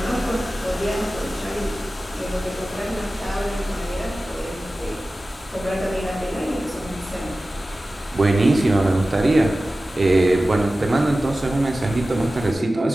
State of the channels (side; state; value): both; normal; correlation 0.96